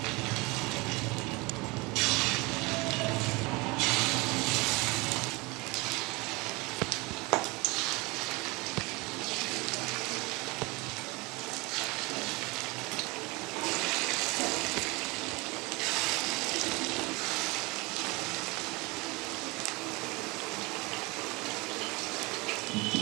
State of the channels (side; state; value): left; quieter; 25.1 dB